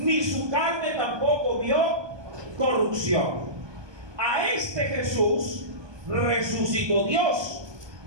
su carne tampoco vio corrupción. A este Jesús resucitó Dios,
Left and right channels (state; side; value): late; left; 1.2 ms